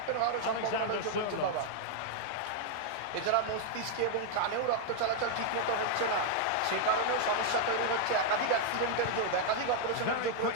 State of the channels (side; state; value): both; different; correlation 0.00